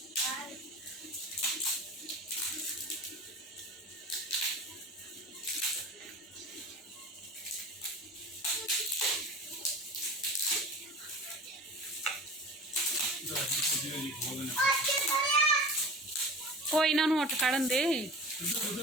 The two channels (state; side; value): normal; both; correlation 0.36